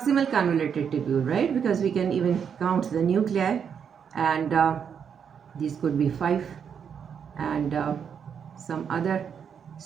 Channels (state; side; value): quieter; left; 7.4 dB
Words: convoluted tubule, right? Because we can even count the nuclei, and these could be 5, and some other